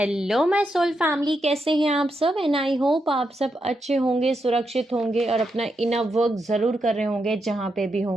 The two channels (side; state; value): both; normal; correlation 0.83